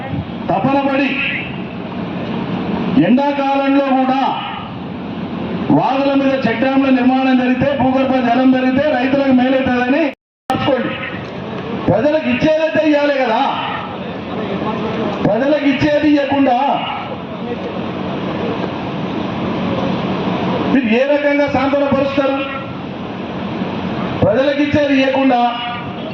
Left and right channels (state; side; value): identical; both; correlation 1.00